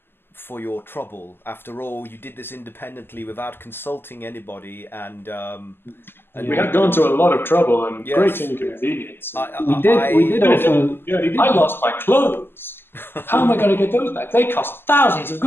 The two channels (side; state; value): right; late; 0.10 ms